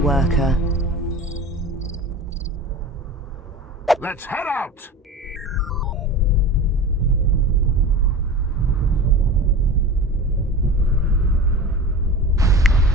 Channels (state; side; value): normal; both; correlation 0.33